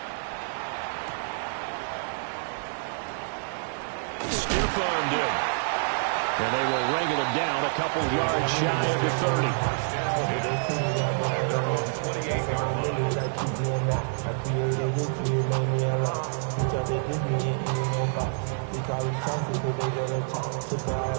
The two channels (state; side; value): silent; left; digital silence